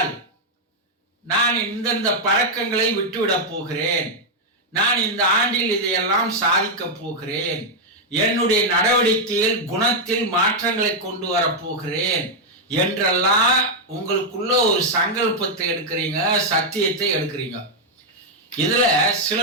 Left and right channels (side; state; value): both; normal; correlation -0.01